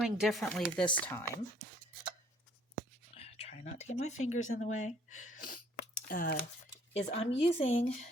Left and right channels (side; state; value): both; normal; correlation 0.60